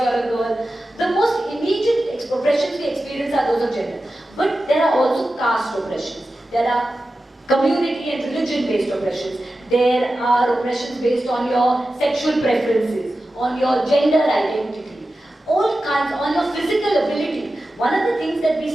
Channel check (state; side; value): normal; both; correlation 0.93